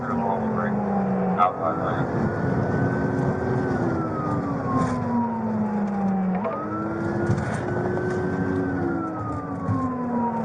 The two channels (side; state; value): both; identical; correlation 1.00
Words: to the normal break. Outside lane.